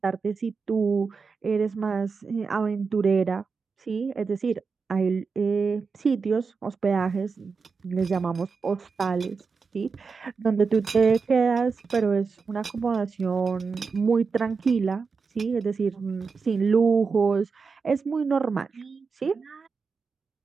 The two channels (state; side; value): quieter; left; 5.0 dB